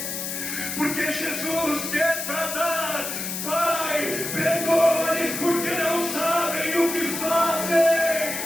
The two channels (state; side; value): noise; left; hiss, 5 dB below the sound